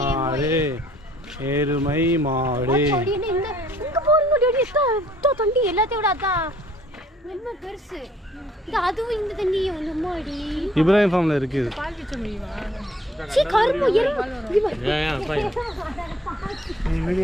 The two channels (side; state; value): both; normal; correlation 0.60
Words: மாடு எருமை மாடு இங்க போறீங்க டேடி தண்ணி எல்லாத்தையும் விட அதான் ரொம்ப பெருசு இது அதுவும் இந்த தண்ணி வந்து மாடி இப்ராஹிம் ஃபார்ம்ல இருக்குது. பால் கிச்ச முடியுமா? சீ கரும்பு எருமை